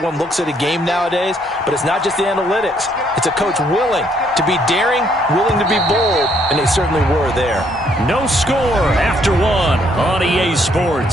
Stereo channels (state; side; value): normal; both; correlation 0.68